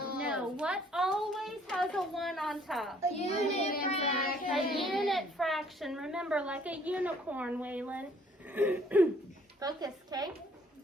No. What always has a 1 on top? A unit fraction. A unit fraction. Remember, like a unicorn, Waylon. Focus, okay?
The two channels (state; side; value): normal; both; correlation 0.61